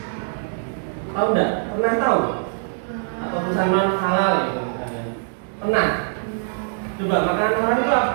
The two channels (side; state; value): left; silent; digital silence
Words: Tahu nggak? Pernah tahu? Atau tulisan non halal itu misalnya? Pernah? Coba makanan haram itu